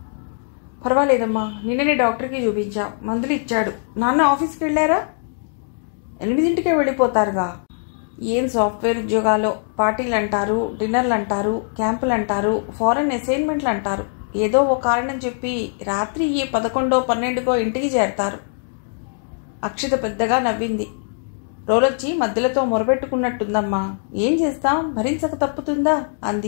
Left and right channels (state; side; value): silent; right; 65 dB below the other